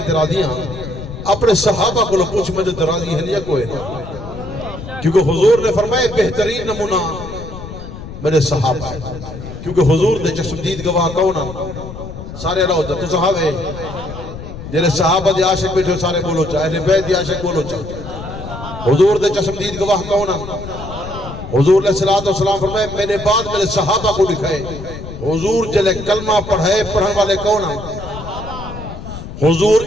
تے راضیاں اپنے صحابہ کو پوچھ میں تے راضی ہیں یا کوئی نہ کیونکہ حضور نے فرمایا بہترین نمونہ میرے صحابہ ہیں کیونکہ حضور دے چشمدید گواہ کون ہیں سارے اللہ ہوتا تو صحابے جنہیں صحابہ دے عاشق بیٹھے سارے بولو چاہے اہل بیت دے عاشق بولو چاہے حضور دے چشمدید گواہ کون ہیں حضور علیہ السلام فرمائے میں نے بعد میرے صحابہ کو لکھائے حضور جلے کلمہ پڑھائے پڑھن والے کون ہیں حضور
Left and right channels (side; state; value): left; noise; rumble, 11 dB below the sound